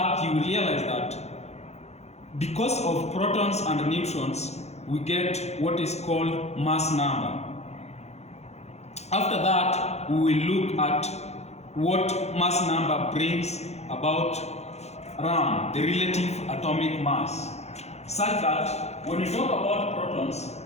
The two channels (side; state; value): right; late; 0.31 ms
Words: you will realize that because of protons and neutrons we get what is called mass number. After that we will look at what mass number brings about around the relative atomic mass, such that when we talk about protons,